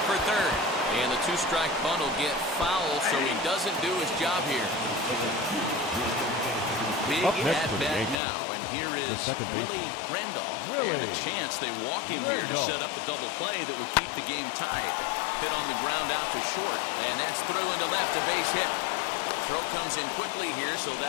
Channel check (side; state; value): right; drops out; at 8.2 s